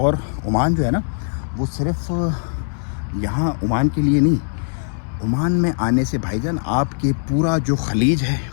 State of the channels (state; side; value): silent; right; 65 dB below the other